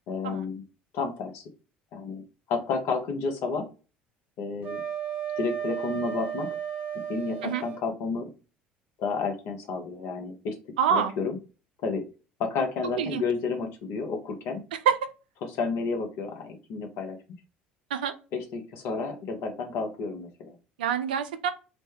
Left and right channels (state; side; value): normal; both; correlation 0.30